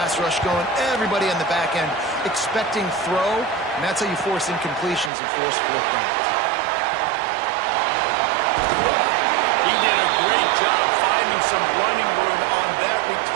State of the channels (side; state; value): left; drops out; at 5.1 s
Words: rush going, everybody on the back end expecting throw, and that's how you force incompletions and force 4th downs. He did a great job finding some running room on that